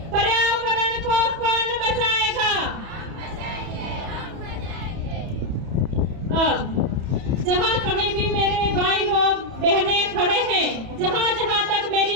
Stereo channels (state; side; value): late; left; 31 ms